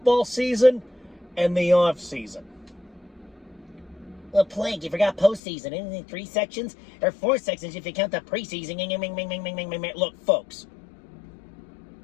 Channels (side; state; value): right; drops out; at 5.4 s